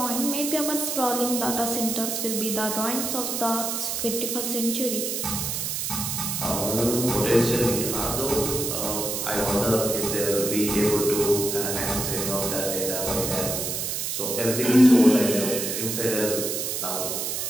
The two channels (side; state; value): right; noise; hiss, 2 dB below the sound